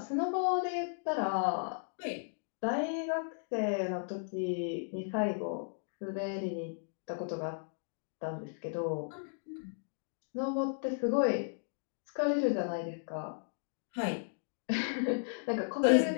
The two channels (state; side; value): silent; right; digital silence